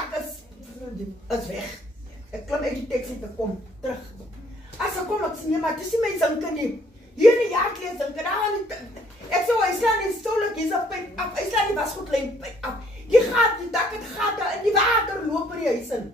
is weg." Ek klim uit die taxi te kom terug. As ek kom, ek sê nee, maar dis nie my zinke nie. Hier in die jaarkleed zinke, daar aan die ek sê, hy slaan die stolik, hy's op pyp af. Hy slaan die wasgoedlyn pyp af. Die dak het gate in die water loop in die huis in.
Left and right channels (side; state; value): both; normal; correlation 0.64